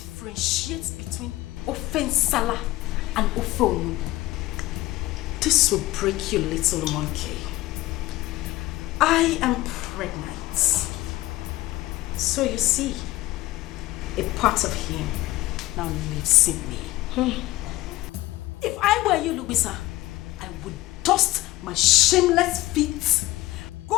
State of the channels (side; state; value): right; quieter; 17.6 dB